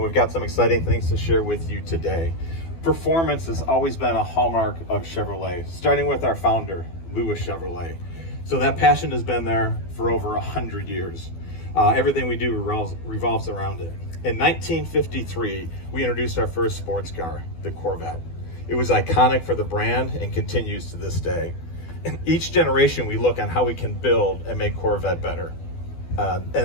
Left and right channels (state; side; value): late; right; 12 ms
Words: got some exciting things to share with you today. Performance has always been a hallmark of Chevrolet, starting with our founder, Louis Chevrolet. So that passion has been there for over 100 years. Everything we do revolves around it. In 1953, we introduced our first sports car, the Corvette. It was iconic for the brand and continues to this day. In each generation, we look on how we can build and make Corvette better.